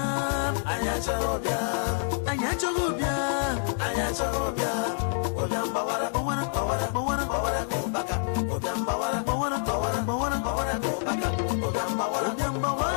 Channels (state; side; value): silent; right; 60 dB below the other